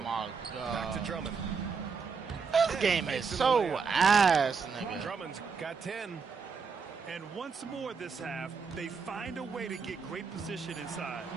my God. Back to Drummond. This game is so ass, nigga. Drummond's got 10. And once more this half, they find a way to get great position inside.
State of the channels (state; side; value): quieter; left; 5.4 dB